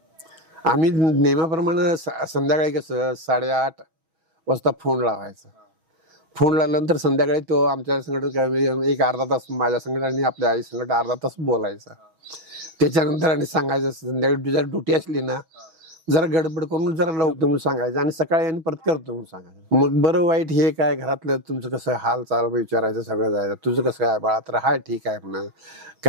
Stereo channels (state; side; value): late; left; 6.2 ms